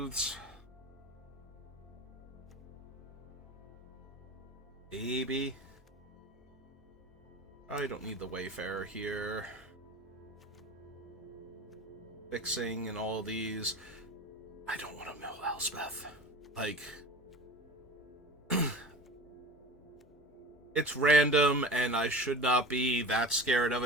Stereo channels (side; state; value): both; normal; correlation 0.36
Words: Maybe. I don't need the Wayfarer here. Fixing and all these. I don't want to mill Elspeth. Like, it's random and I should not be that scared of